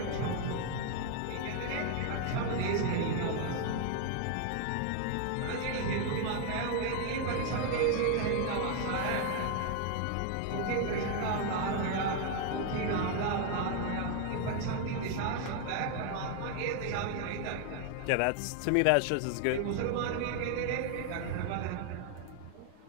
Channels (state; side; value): different; both; correlation 0.00